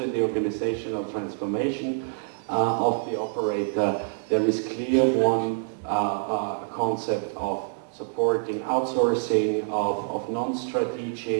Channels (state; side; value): silent; left; digital silence